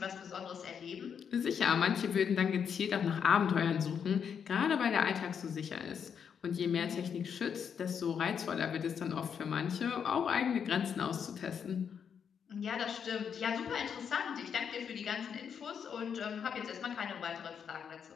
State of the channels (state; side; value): quieter; right; 7.3 dB